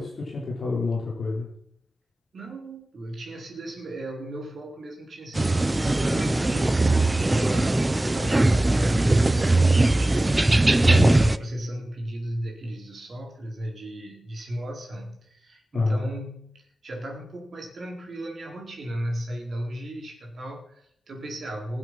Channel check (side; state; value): both; normal; correlation 0.97